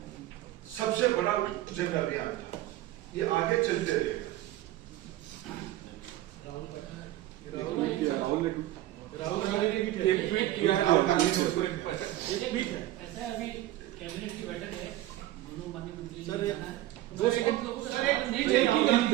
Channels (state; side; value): quieter; left; 15.0 dB